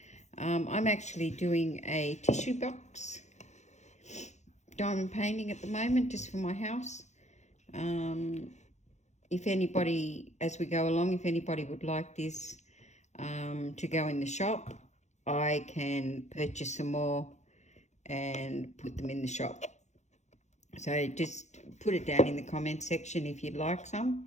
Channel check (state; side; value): late; right; 0.33 ms